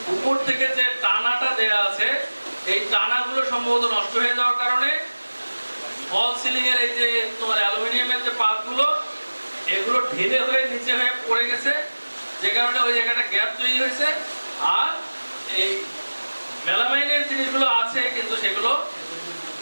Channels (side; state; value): both; inverted; correlation -1.00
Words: উপর থেকে যে টানাটা দেয়া আছে এই টানাগুলো সম্ভবত নষ্ট হয়ে যাওয়ার কারণে ফলস সিলিং এর এই যে তোমার অ্যালুমিনিয়ামের যে পাতগুলো এগুলো ঢিলে হয়ে নিচে হয়ে পড়ে গেছে, যে কারণে ওই জায়গাটা গ্যাপ তৈরি হয়েছে। আর এই মেলামাইনের জিনিসগুলো আছে কিন্তু সেগুলো